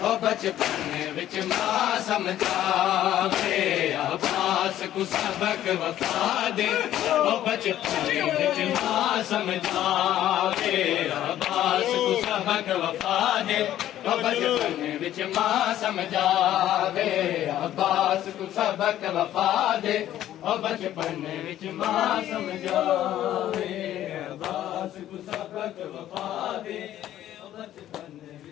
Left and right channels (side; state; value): right; quieter; 12.5 dB